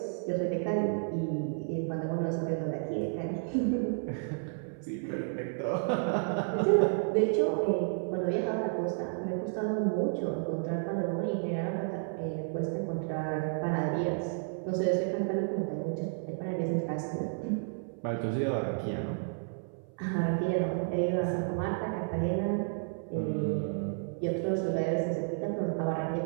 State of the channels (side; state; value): left; silent; 57 dB below the other